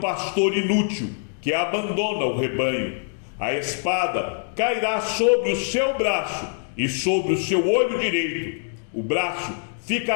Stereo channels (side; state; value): right; silent; 56 dB below the other